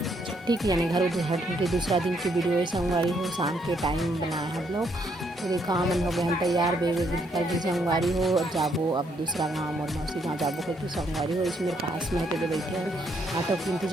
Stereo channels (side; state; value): both; normal; correlation 0.72